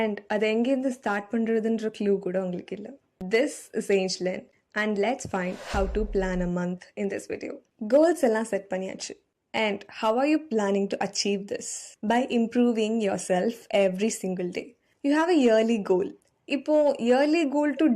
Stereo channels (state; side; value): identical; both; correlation 1.00